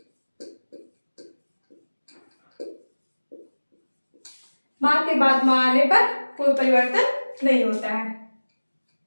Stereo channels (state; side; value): inverted; both; correlation -1.00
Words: माँ के बाद माँ आने पर कोई परिवर्तन नहीं होता है।